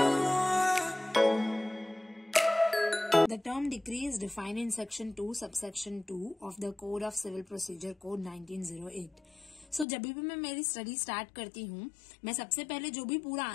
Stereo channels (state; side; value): drops out; right; at 9.9 s